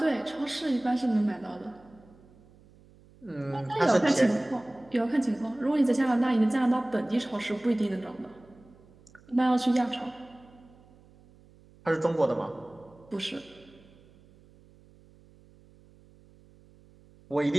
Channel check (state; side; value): noise; right; hum, 27 dB below the sound